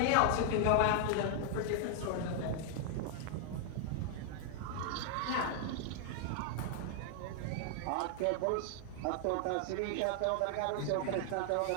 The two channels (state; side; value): different; both; correlation 0.00